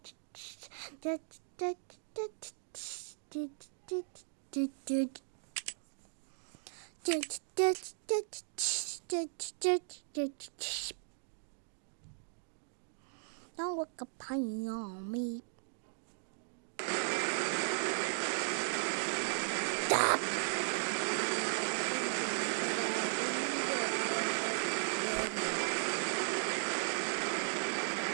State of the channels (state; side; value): silent; left; digital silence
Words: Don't look a pine on me.